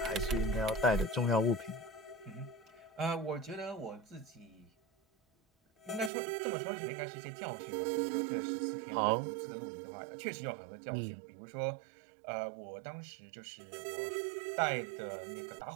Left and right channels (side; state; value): left; drops out; at 6.1 s